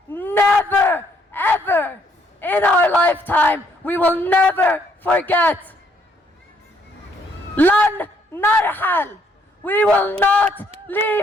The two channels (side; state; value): both; normal; correlation 0.68